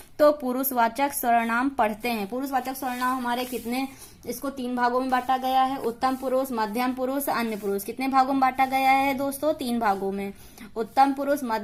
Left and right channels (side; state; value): both; identical; correlation 1.00